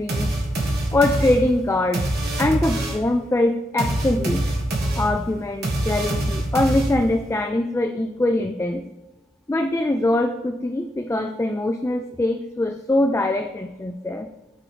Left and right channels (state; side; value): normal; both; correlation 0.82